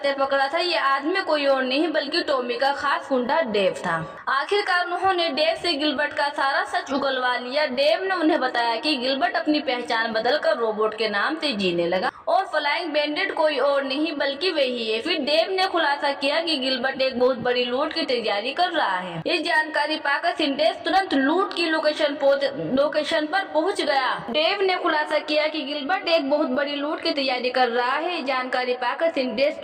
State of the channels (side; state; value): both; identical; correlation 1.00